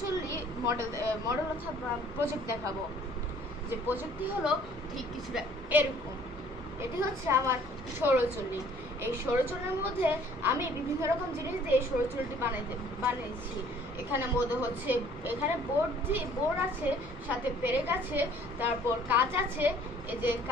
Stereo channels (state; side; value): normal; both; correlation 0.56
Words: মডেল অথবা প্রজেক্ট দেখাবো। যে প্রজেক্টটি হলো ঠিক কিছুটা এরকম। এটি হচ্ছে আমার সৌরচুল্লি। এই সৌরচুল্লির মধ্যে আমি বিভিন্ন রকম জিনিস দিয়ে সৌরচুল্লিটি বানিয়েছি। এখানে মধ্যে হচ্ছে এখানে বোর্ড আছে, সাথে পেরেক আছে, তারপর কাঁচ আছে, এই যে